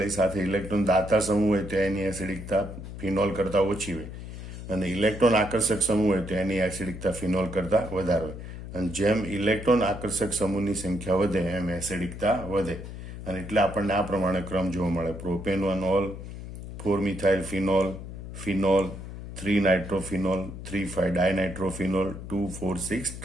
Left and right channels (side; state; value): left; noise; hum, 10 dB below the sound